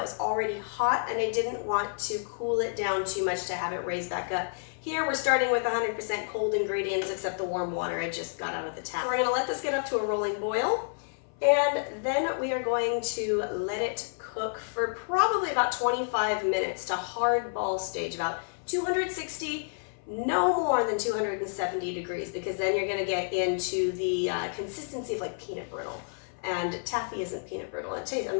was already hot and I didn't want to cool it down too much to have it raise back up. Here we're starting with 100% cold ingredients except the warm water I just got out of the tap. So we're gonna let this get up to a rolling boil, and then we are going to let it cook for probably about 25 minutes to hard ball stage, about 260, no more than 270 degrees, because then you're gonna get into the consistency of like peanut brittle. And taffy isn't peanut brittle.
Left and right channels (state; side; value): silent; right; 57 dB below the other